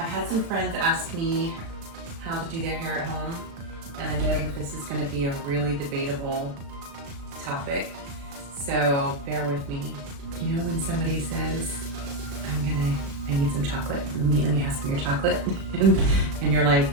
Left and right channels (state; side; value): late; left; 36 ms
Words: had some friends ask me how to do their hair at home, and I know that this is going to be a really debatable topic. So bear with me. You know when somebody says, I need some chocolate, let me have some of your chocolate, and you're like,